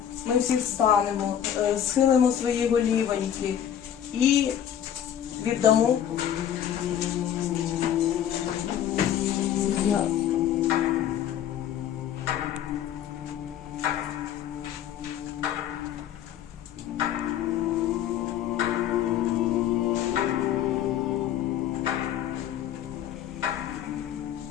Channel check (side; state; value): right; quieter; 10.1 dB